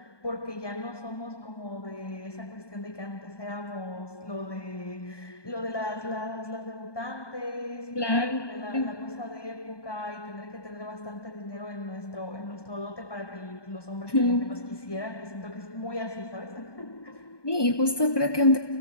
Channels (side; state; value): right; late; 1.2 ms